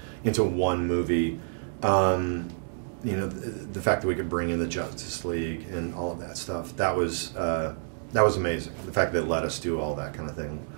into one movie, the fact that we could bring in the Justice League and all of that stuff, that was amazing. The fact that they let us do all that kind of thing.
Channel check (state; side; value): silent; left; digital silence